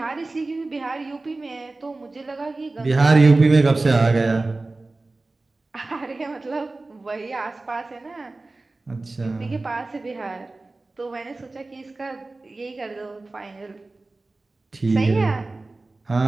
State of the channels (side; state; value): left; quieter; 3.2 dB